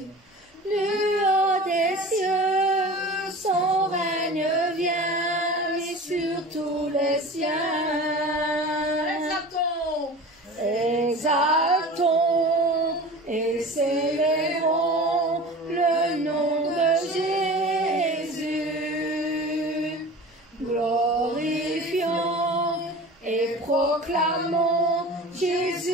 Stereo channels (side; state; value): both; normal; correlation 0.37